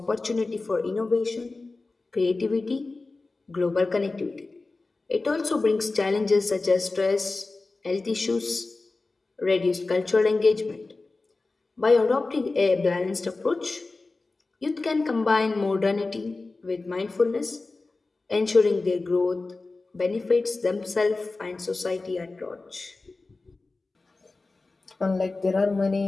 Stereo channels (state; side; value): quieter; right; 3.5 dB